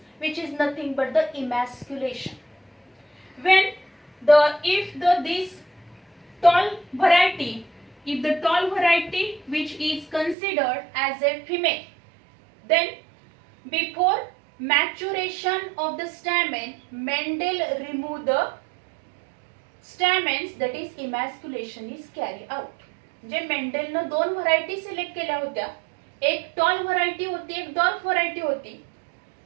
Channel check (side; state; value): left; drops out; at 10.4 s